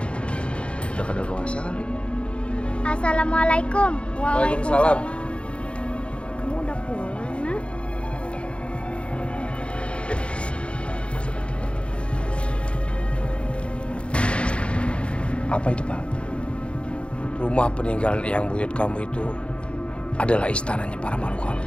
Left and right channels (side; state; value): right; late; 0.058 ms